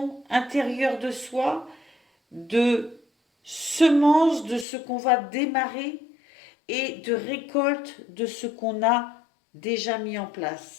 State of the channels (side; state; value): right; drops out; at 4.7 s